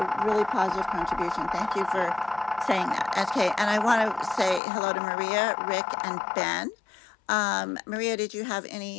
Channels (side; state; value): right; drops out; at 4.6 s